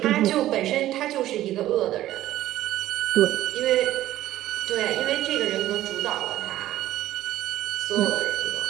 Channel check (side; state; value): left; quieter; 14.1 dB